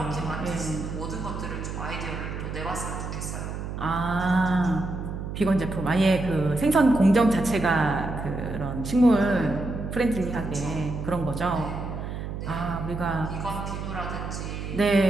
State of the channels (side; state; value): right; noise; hum, 6 dB below the sound